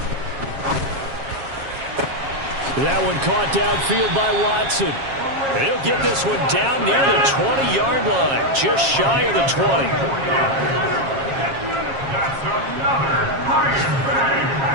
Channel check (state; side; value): late; left; 7.4 ms